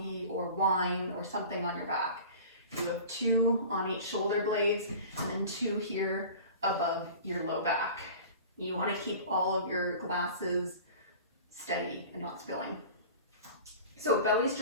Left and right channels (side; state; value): both; inverted; correlation -0.39